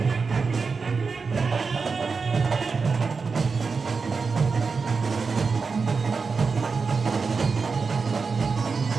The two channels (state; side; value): quieter; left; 4.8 dB